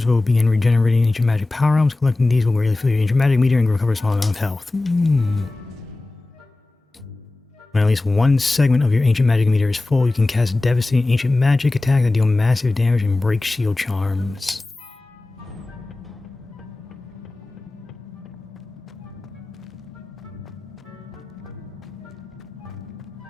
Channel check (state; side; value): quieter; right; 3.1 dB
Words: will begin regenerating ancient magic power arms. Collecting these will greatly fill your ancient magic meter and recover a small amount of health. When at least one segment of your ancient magic meter is full, you can cast devastating ancient magic attacks that deal massive damage and break shield charms.